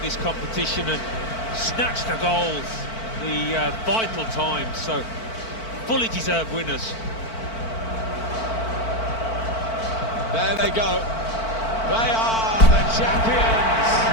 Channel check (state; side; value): late; right; 4.5 ms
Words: this competition and snatched the goals, the vital times, so fully deserved winners. There they go. They are the